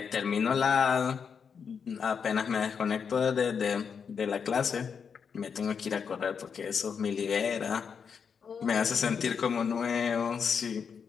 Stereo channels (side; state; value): right; quieter; 6.5 dB